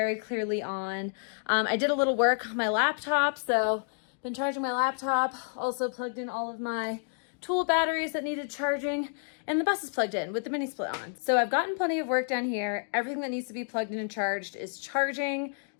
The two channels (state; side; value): silent; right; digital silence